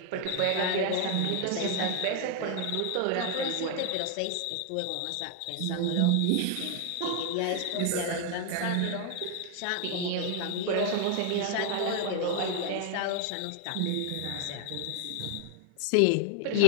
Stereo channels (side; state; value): both; different; correlation 0.00